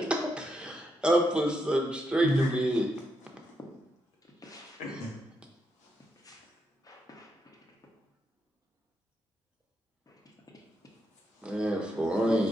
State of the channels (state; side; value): normal; both; correlation 0.81